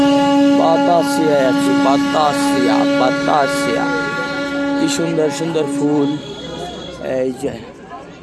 বাতাসিয়ায় আছি। বাতাসিয়া, বাতাসিয়া। কি সুন্দর সুন্দর ফুল, এই যে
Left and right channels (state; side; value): identical; both; correlation 1.00